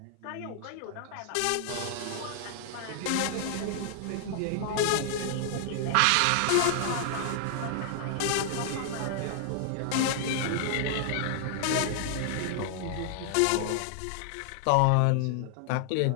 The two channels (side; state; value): both; different; correlation 0.00